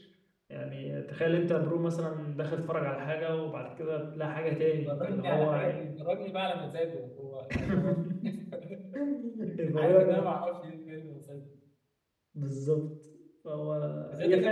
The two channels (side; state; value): both; identical; correlation 1.00